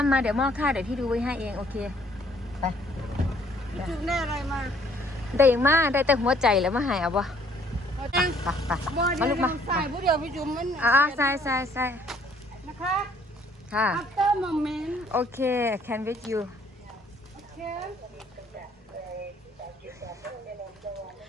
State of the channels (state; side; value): normal; both; correlation 0.62